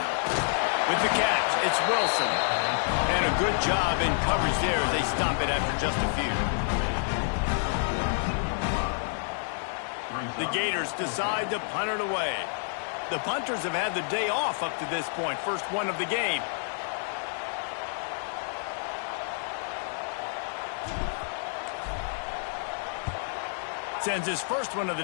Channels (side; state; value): right; silent; digital silence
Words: With the catch, it's Wilson. And a good job in coverage there as they stop it after just a few. The Gators decide to punt it away. The punters have had the day off up to this point. First one of the game. Sends his first one of the